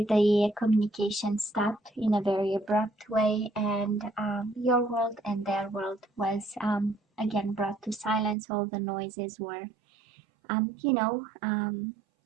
the communication stopped in a very abrupt way, and your world and their world was again brought to silence. All the noises were,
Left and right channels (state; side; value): drops out; left; at 8.3 s